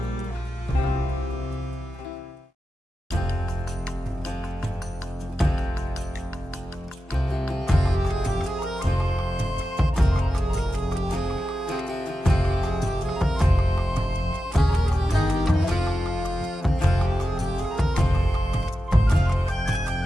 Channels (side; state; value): both; normal; correlation 0.91